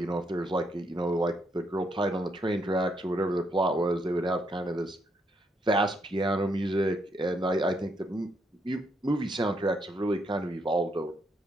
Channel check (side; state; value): both; normal; correlation 0.75